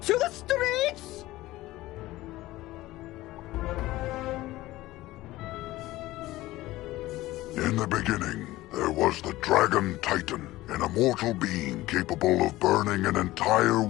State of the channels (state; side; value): quieter; right; 17.4 dB